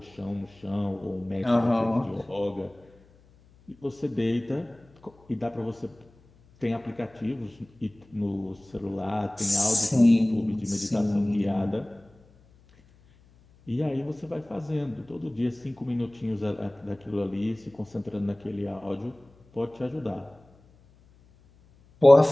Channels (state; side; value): noise; left; hum, 29 dB below the sound